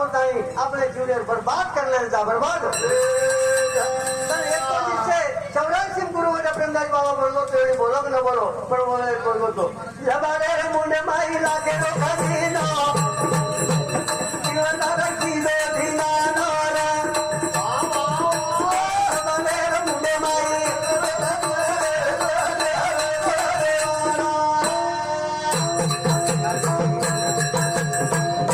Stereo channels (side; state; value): both; identical; correlation 1.00